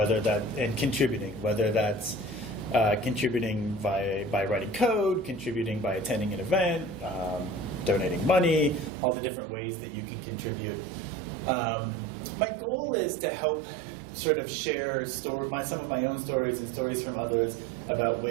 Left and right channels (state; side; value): drops out; left; at 8.9 s